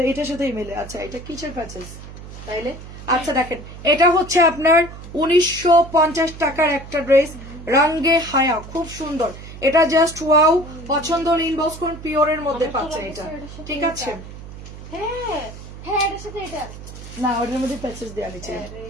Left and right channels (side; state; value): right; noise; hum, 14 dB below the sound